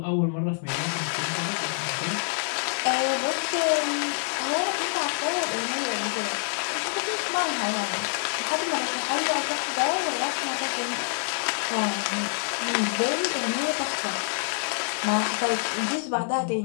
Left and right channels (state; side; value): silent; right; digital silence